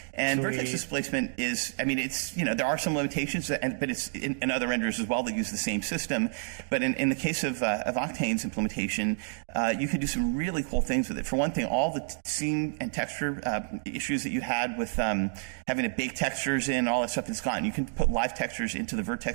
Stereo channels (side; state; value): left; silent; digital silence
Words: And Sweet. Vertex displacement is, it's, there are some limitations, but it's in other renderers as well that use the same system. But in the case of Octane's implementation, you could do some really cool things with it. For one thing, all the scene and texture issues that you had with having to bake textures in, all that stuff is gone. You can put live textures into the